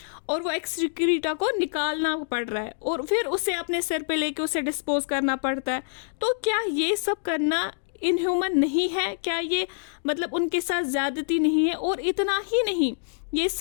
और वो एक्सक्रीटा को निकालना पड़ रहा है और फिर उसे अपने सिर पे लेके उसे डिस्पोज करना पड़ता है। तो क्या ये सब करना इनह्यूमन नहीं है? क्या ये मतलब उनके साथ ज़्यादती नहीं है? और इतना ही नहीं, ये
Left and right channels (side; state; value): right; silent; digital silence